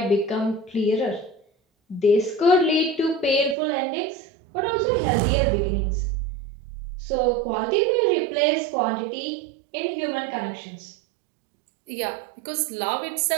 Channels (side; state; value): left; drops out; at 3.6 s